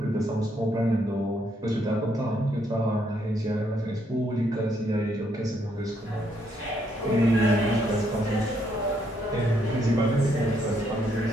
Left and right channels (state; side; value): normal; both; correlation 0.73